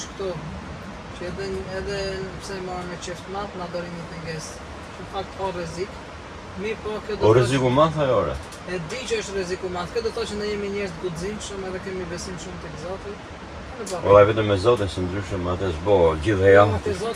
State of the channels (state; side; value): identical; both; correlation 1.00